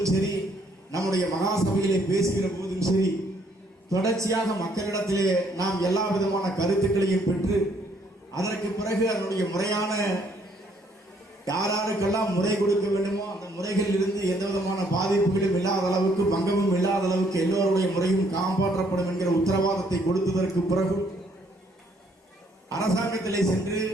சரி, நம்முடைய மகாசபையிலே பேசுகிற போதும் சரி, தொடர்ச்சியாக மக்களிடத்திலே நாம் எல்லா விதமான கருத்துக்களையும் பெற்று அதற்கு பிறகு அதனுடைய முறையான யாராருக்கெல்லாம் முறை கொடுக்க வேண்டுமோ அந்த முறைகளில் இருந்து எந்த விதமான பாதிப்புகளும் இல்லாத அளவுக்கு பங்கமும் இல்லாத அளவுக்கு எல்லோருடைய முறையும் காப்பாற்றப்படும் என்கிற உத்தரவாதத்தை கொடுத்ததற்கு பிறகு அரசாங்கத்திலே சென்று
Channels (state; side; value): normal; both; correlation 0.67